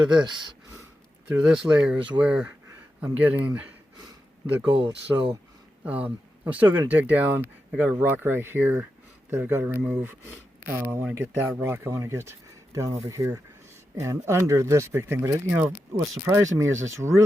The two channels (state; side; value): normal; both; correlation 0.89